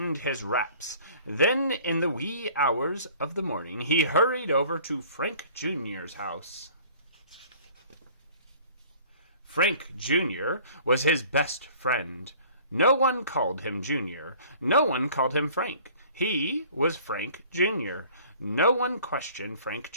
his wraps. Then, in the wee hours of the morning, he hurried over to Frank Jr.'s house. Frank Jr. was his best friend. No one called him Junior. No one called him Frank. He was Frank Jr. No one questioned Frank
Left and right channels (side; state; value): both; inverted; correlation -0.51